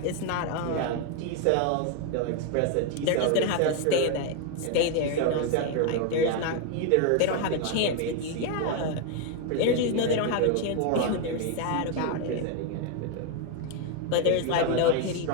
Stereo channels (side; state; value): both; different; correlation 0.01